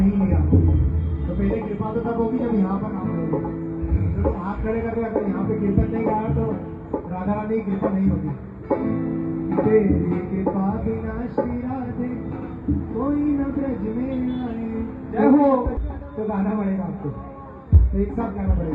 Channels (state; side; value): identical; both; correlation 1.00